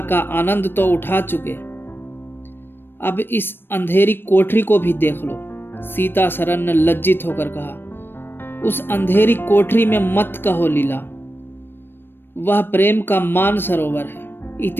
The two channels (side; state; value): right; late; 0.099 ms